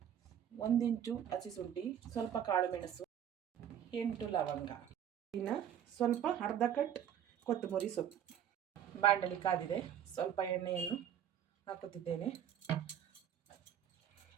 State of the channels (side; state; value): left; quieter; 9.8 dB